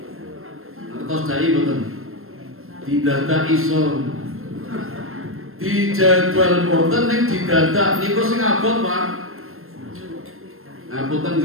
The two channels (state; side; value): late; left; 0.61 ms